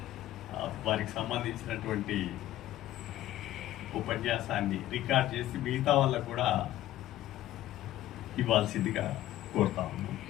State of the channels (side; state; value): right; quieter; 14.1 dB